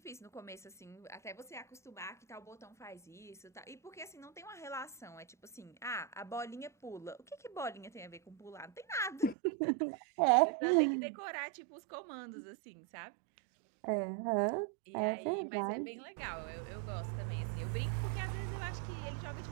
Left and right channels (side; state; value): left; drops out; at 9.3 s